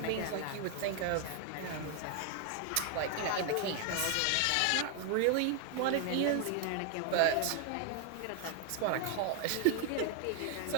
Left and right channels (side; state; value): both; different; correlation 0.00